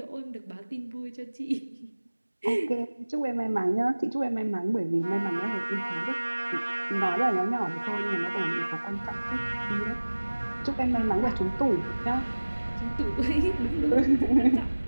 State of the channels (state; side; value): inverted; both; correlation -1.00